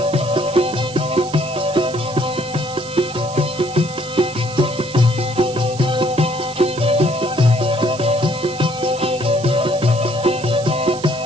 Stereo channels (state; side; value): noise; right; hiss, 15 dB below the sound